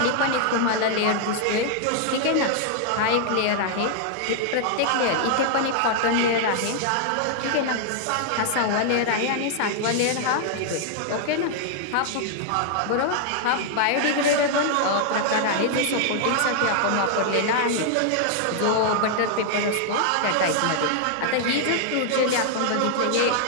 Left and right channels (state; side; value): different; both; correlation 0.00